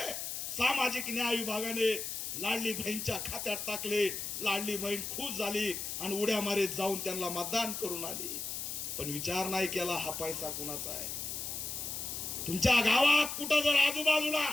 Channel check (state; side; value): noise; left; hiss, 5 dB below the sound